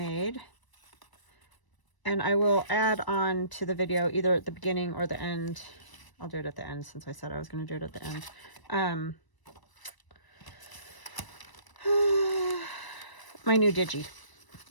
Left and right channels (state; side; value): late; right; 1.0 ms